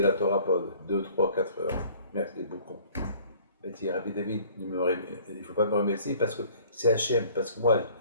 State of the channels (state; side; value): inverted; both; correlation -0.53